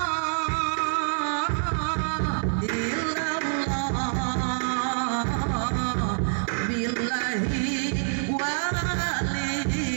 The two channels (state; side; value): silent; left; 59 dB below the other